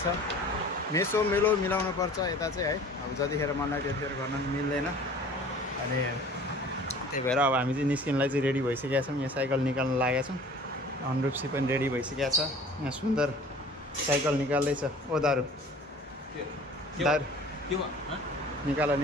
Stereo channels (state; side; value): normal; both; correlation 0.46